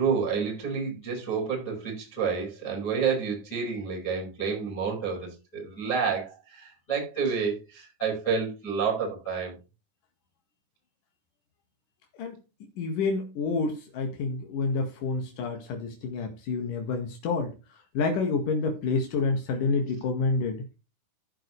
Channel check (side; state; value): right; late; 10 ms